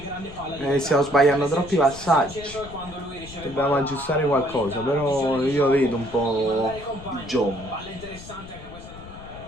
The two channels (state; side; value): noise; left; rumble, 16 dB below the sound